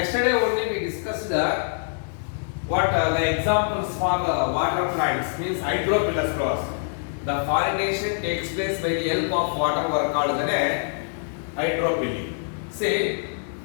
only we discussed the examples for the water plants, means hydrophilous flowers. The pollination takes place by the help of water were called the hydrophily. See,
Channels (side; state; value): right; silent; 62 dB below the other